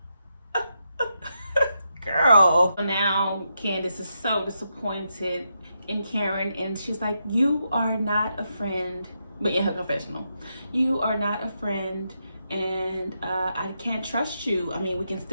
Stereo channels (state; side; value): inverted; both; correlation -0.83